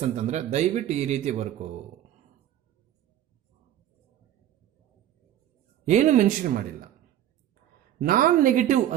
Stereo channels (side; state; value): left; quieter; 11.9 dB